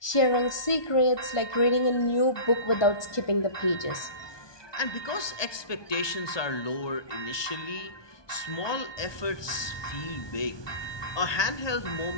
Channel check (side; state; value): right; late; 1.2 ms